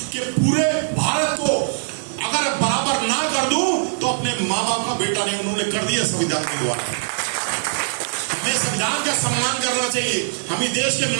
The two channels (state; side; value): silent; left; 60 dB below the other